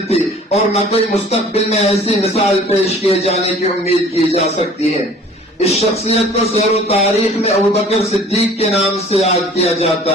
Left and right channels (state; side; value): normal; both; correlation 0.49